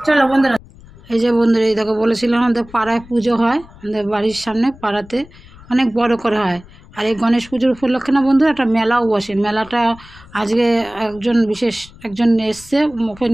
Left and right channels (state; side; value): noise; left; rumble, 22 dB below the sound